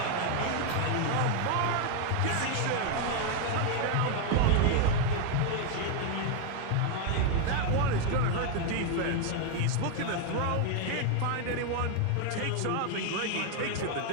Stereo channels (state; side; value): different; both; correlation 0.01